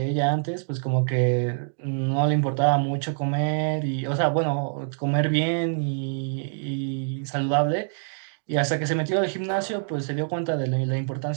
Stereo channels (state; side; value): silent; left; digital silence